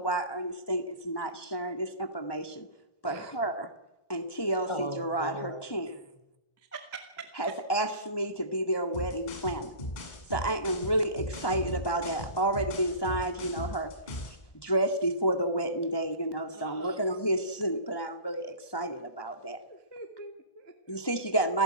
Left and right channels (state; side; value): late; right; 1.2 ms